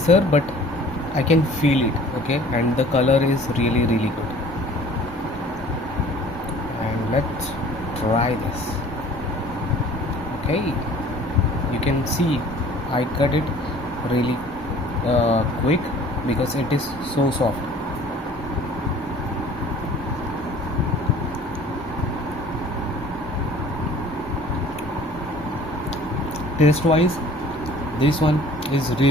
but I can feel it, okay, and the color is really good. And let's try this. Okay, you can see I cut it really quick because it is so soft. Taste wise, this one is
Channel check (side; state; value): both; normal; correlation 0.49